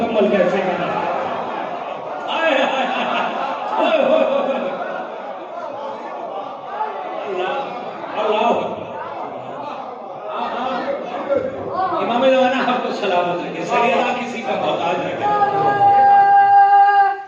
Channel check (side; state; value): both; identical; correlation 1.00